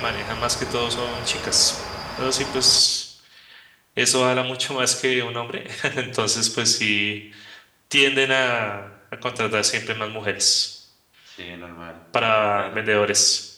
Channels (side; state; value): both; identical; correlation 1.00